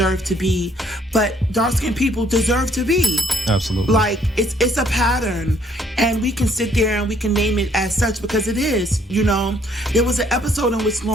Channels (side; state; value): both; normal; correlation 0.65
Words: to be, but dark-skinned people deserve to be. Absolutely. Like, it's a pattern, and we can sit there and we can name it as such because it is, There was an episode in which